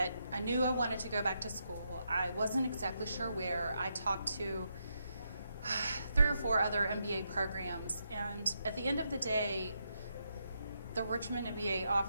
I knew I wanted to go back to school. I wasn't exactly sure where. I talked to 3 or 4 other MBA programs, and at the end of the day, the Richmond MBA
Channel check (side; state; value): both; inverted; correlation -0.81